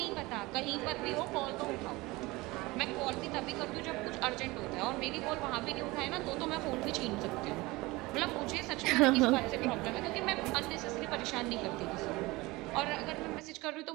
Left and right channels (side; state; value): left; quieter; 21.7 dB